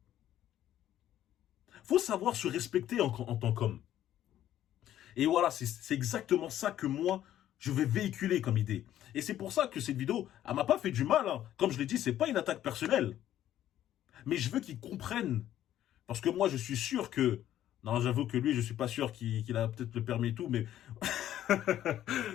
Faut savoir se respecter en tant qu'homme. Et voilà, c'est exactement ça que moi, je vais véhiculer comme idée. Et c'est pour ça que cette vidéo, elle m'a pas fait du mal. Hein. Comme je l'ai dit, c'est pas une attaque personnelle. Mais je veux qu'ils comprennent. Parce que moi, je suis sûr que... Non, j'avoue que lui, je suis pas sûr qu'il a peut-être le permis et tout, mais...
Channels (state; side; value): quieter; right; 12.1 dB